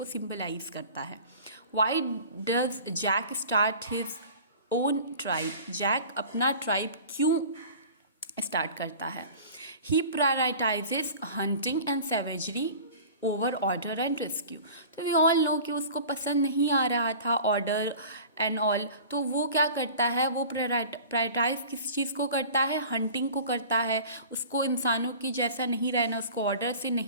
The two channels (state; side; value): inverted; both; correlation -0.41